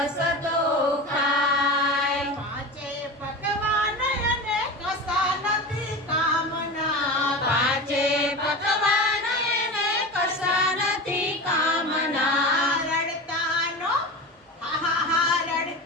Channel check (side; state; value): both; normal; correlation 0.28